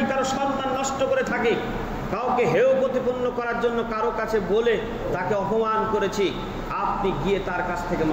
কারো সম্মান নষ্ট করে থাকি, কাউকে হেয় প্রতিপন্ন করার জন্য কারো কাছে বলে তাকে অপমান করেছি, আপনি গিয়ে তার কাছ থেকে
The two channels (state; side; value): identical; both; correlation 1.00